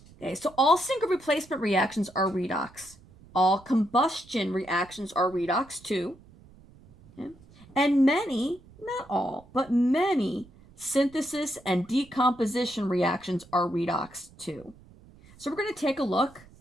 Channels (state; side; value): noise; right; rumble, 24 dB below the sound